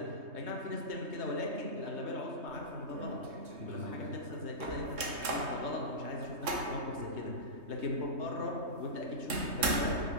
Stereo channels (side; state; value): left; late; 3.2 ms